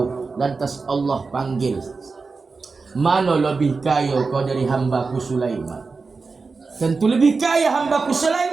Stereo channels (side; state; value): left; quieter; 4.3 dB